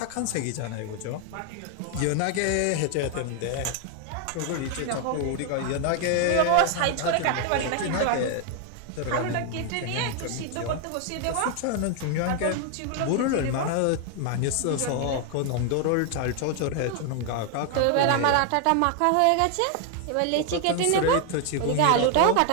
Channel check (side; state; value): both; different; correlation 0.00